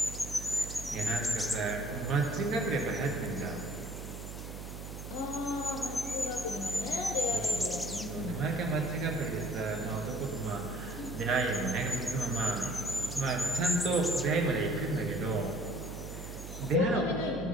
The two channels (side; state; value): right; noise; hum, 9 dB below the sound